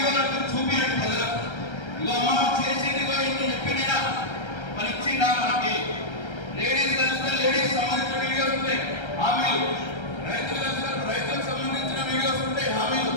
చూపించండి ప్రజలకు. ఇవాళ మనం చేసేది ఇంటి చెప్పినా మరి ఇచ్చిందా? మనకి లేడీస్ కలిస్తే లేడీస్ సంబంధించిన వీడియోస్ ఉంటాయి, హామీలు, రైతులకు సంబంధించిన వీడియోస్ ఉంటాయి, హామీలు.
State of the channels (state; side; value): late; right; 1.3 ms